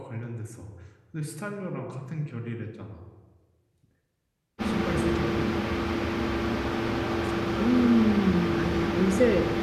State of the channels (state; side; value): identical; both; correlation 1.00